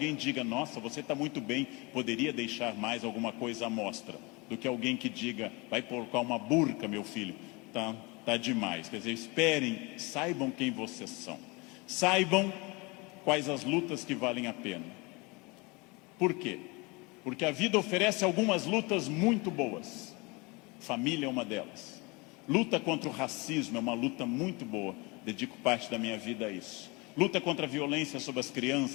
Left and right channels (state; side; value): quieter; right; 26.9 dB